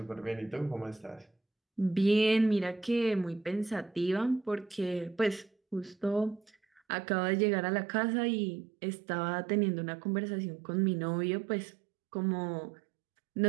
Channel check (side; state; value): left; drops out; at 6.8 s